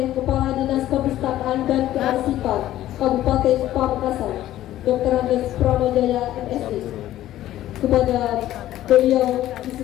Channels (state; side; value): quieter; right; 13.7 dB